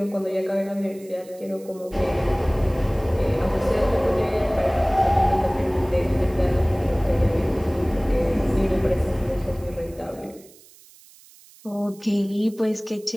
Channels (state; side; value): noise; right; hiss, 24 dB below the sound